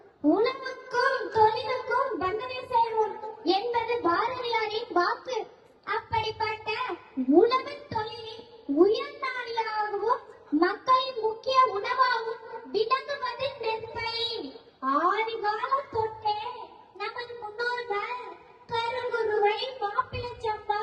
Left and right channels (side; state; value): both; identical; correlation 1.00